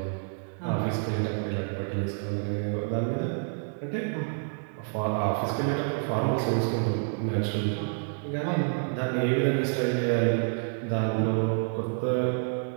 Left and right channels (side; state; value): left; silent; 59 dB below the other